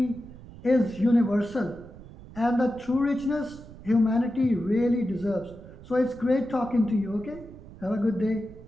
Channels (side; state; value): right; noise; rumble, 17 dB below the sound